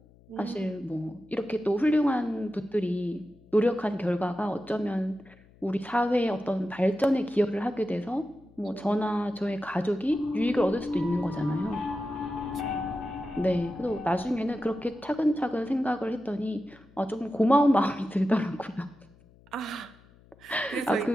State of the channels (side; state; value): left; noise; hum, 27 dB below the sound